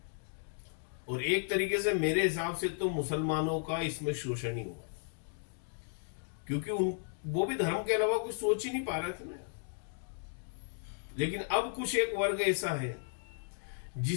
और एक तरीके से मेरे हिसाब से तो मुसलमानों का इसमें शोषण ही हुआ, क्योंकि वो भी धर्म के अलावा कुछ सोच ही नहीं पा रहे थे ना। लेकिन अब कुछ एक वर्ग ऐसा है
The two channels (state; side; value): silent; right; digital silence